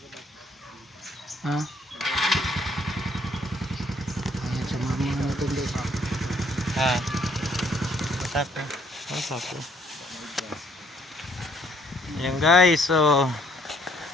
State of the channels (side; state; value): both; normal; correlation 0.65